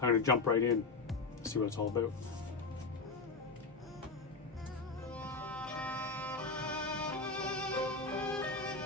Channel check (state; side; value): quieter; right; 4.0 dB